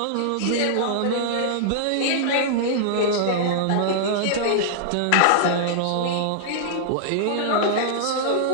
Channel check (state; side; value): different; both; correlation -0.02